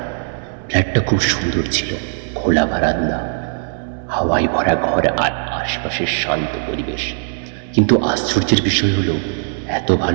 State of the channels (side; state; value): left; silent; 67 dB below the other